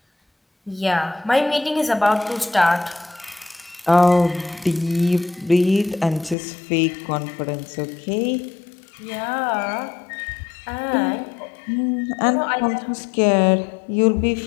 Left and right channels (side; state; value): right; drops out; at 6.4 s